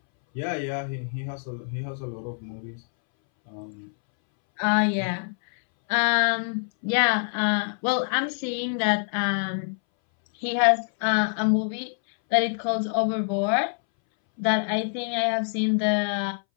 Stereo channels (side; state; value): right; silent; 61 dB below the other